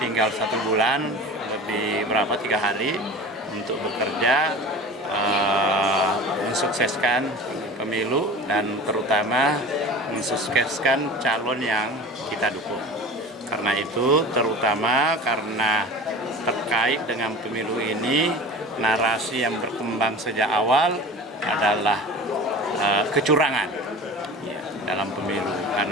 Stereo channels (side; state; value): both; normal; correlation 0.36